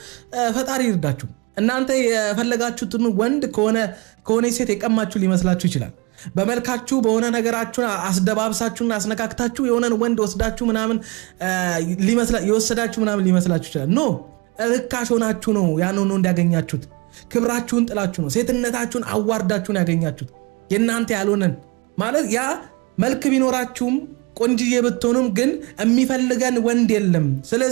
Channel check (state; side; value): quieter; left; 27.8 dB